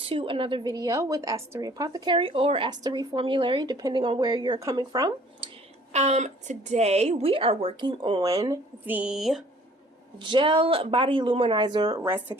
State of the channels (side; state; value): both; normal; correlation 0.55